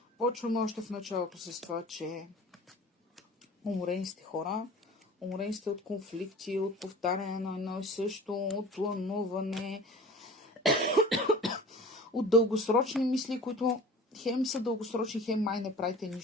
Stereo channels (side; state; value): both; normal; correlation 0.41